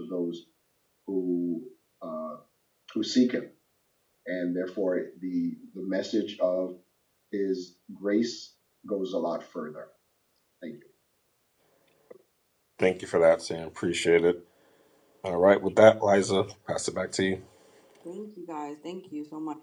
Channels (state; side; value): identical; both; correlation 1.00